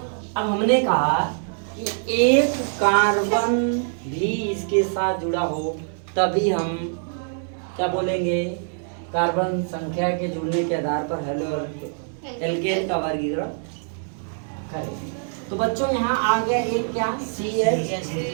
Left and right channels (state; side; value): silent; left; digital silence